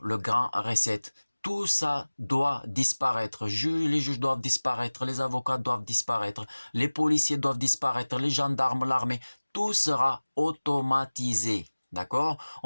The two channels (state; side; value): inverted; both; correlation -1.00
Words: le grand reset. Tout ça doit disparaître. Les juges doivent disparaître, les avocats doivent disparaître, les policiers doivent disparaître, les gendarmes, l'armée, tout sera automatisé. D'accord?